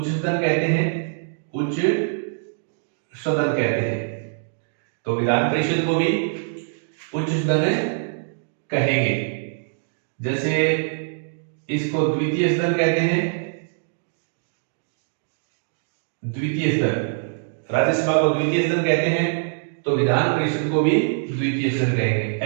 सदन कहते हैं, उच्च सदन कहते हैं, तो विधान परिषद को भी उच्च सदन कहेंगे। जैसे इसको द्वितीय सदन कहते हैं, द्वितीय सदन। राज्यसभा को द्वितीय सदन कहते हैं, तो विधान परिषद को भी द्वितीय सदन कहेंगे।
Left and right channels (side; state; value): left; silent; digital silence